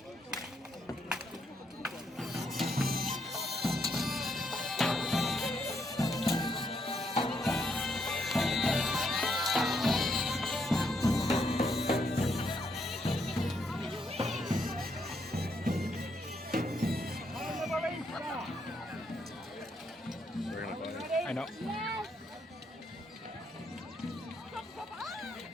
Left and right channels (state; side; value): normal; both; correlation 0.75